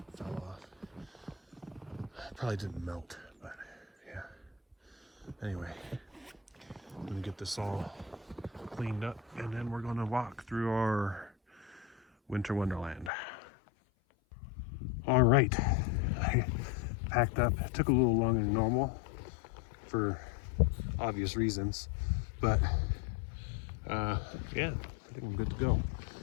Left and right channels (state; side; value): drops out; right; at 13.1 s